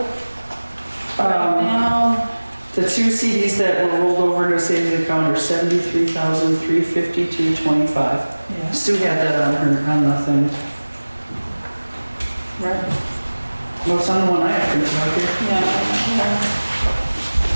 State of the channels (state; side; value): inverted; both; correlation -1.00